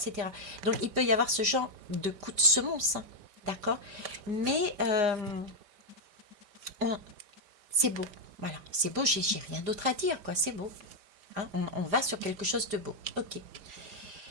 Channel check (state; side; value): late; left; 4.9 ms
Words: Donc il peut y avoir ce genre de coup de semonce, hein, d'accord? Mais c'est beau, voilà, c'est beau, j'ai rien d'autre à dire, quoi, c'est beau. Hein, on va sur quelque chose de beau. Ok.